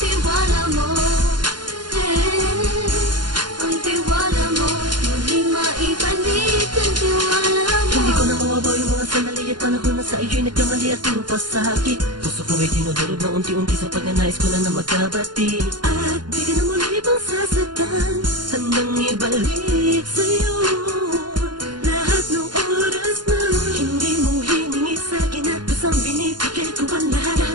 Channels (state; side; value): late; left; 0.71 ms